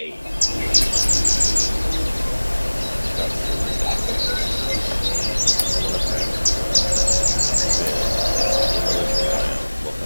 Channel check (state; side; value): inverted; both; correlation -1.00